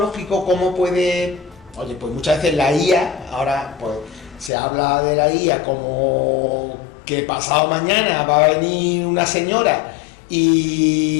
¿cómo puede...? Oye, pues muchas veces la IA, ahora pues se habla de la IA como que pasado mañana va a venir una señora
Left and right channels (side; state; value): right; drops out; at 4.5 s